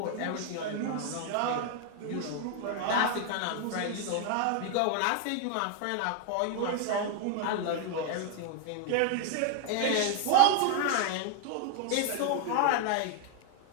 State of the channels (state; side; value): different; both; correlation 0.00